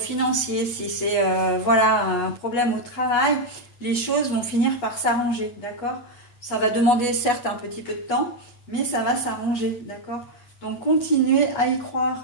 si c'est voilà, un problème au travail, les choses vont finir par s'arranger, d'accord? Ça va demander certes un petit peu de temps, mais ça va s'arranger, d'accord? Donc continuez à y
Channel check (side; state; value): right; late; 8.3 ms